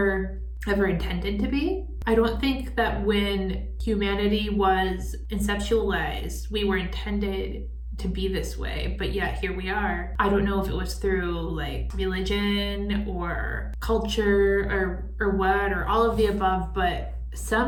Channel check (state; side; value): identical; both; correlation 1.00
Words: ever intended to be. I don't think that when humanity was conceptualized, we were intended to be this way, but yet here we are. I don't know if it was through like religion or culture or what, or all of the above, but